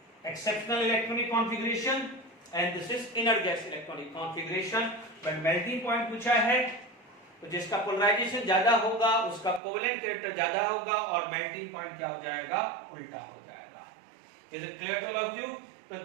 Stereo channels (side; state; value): left; drops out; at 9.6 s